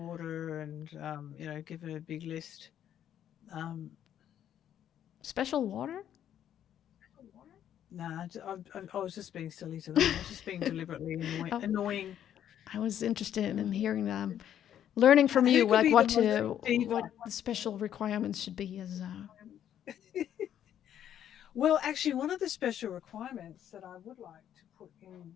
and, give it a big list. Special water? Nah, I was just being silly to them. I was just being deliberately Oh, annoying. I was interested in hearing them, learning from Who you, could like be the most diva? what the special requirements should be as. Well, actually, one of the special requirements that I would like to put in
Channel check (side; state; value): right; quieter; 10.3 dB